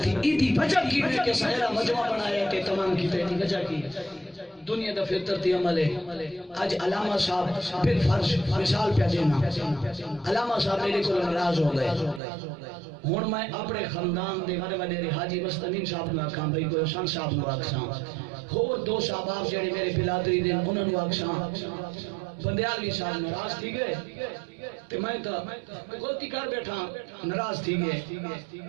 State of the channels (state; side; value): drops out; left; at 12.2 s